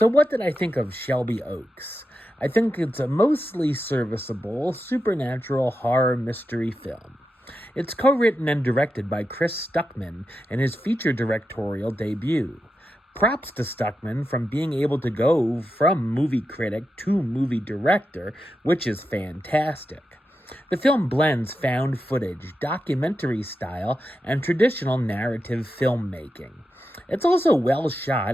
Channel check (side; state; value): both; normal; correlation 0.88